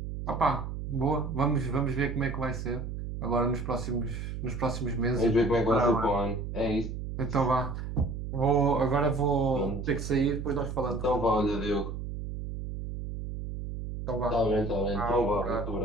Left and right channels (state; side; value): noise; right; hum, 6 dB below the sound